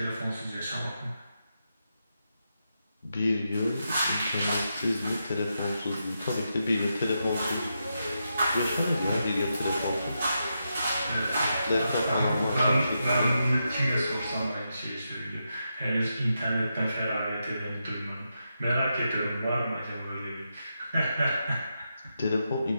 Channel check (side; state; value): both; inverted; correlation -0.85